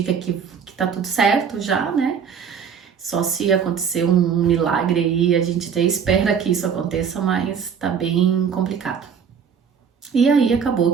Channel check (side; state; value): left; quieter; 7.0 dB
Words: que tá tudo certo já, né? Só se acontecer um milagre aí, a gente até espera que isso aconteça, mas tá bem complicado. E aí acabou